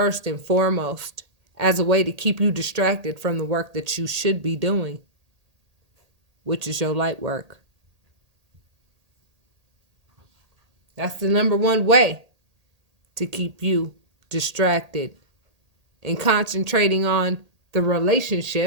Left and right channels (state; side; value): late; left; 1.8 ms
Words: and foremost as a way to keep you distracted from the work that you should be doing, which is your light work. That's the number one way to keep you distracted and concentrating on the